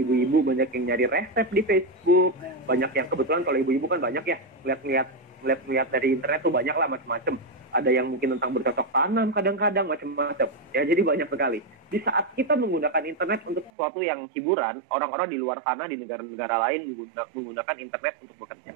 ibu-ibu banyak yang nyari resep di Facebook, banyak yang kebetulan kalau ibu-ibu kan banyak ya lihat dari internet tuh banyak lah macam-macam. Ada yang mungkin tentang bercocok tanam, kadang-kadang macam-macam. Ya, jadi banyak sekali. Di saat kita menggunakan internet untuk sesuatu yang hiburan, orang-orang di luar sana, di negara-negara lain menggunakan internet untuk bekerja.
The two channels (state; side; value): drops out; left; at 13.7 s